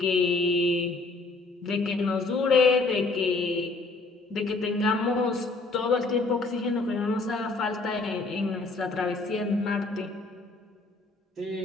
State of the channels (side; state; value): right; quieter; 3.4 dB